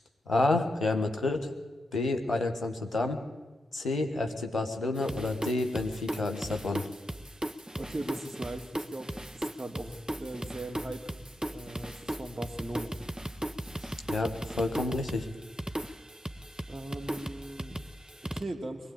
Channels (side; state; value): both; normal; correlation 0.85